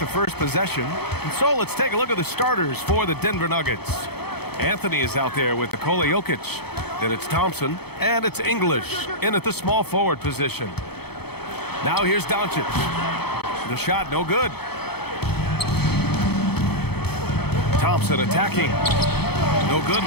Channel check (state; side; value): late; right; 0.97 ms